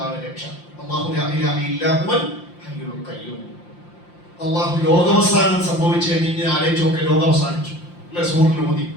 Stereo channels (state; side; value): late; right; 5.7 ms